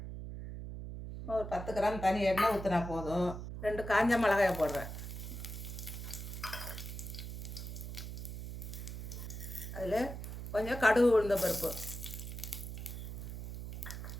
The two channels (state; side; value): noise; right; hum, 7 dB below the sound